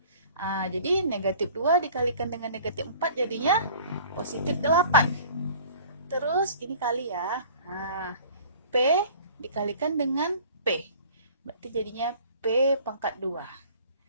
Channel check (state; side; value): inverted; both; correlation -0.48